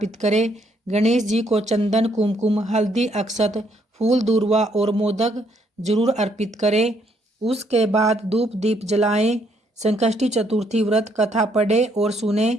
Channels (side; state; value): both; normal; correlation 0.70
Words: करें। गणेश जी को चंदन, कुमकुम, हल्दी, अक्षत, फूल, दूर्वा और मोदक जरूर अर्पित करें। उसके बाद धूप दीप जलाएं, संकष्टी चतुर्थी व्रत कथा पढ़े और सुने।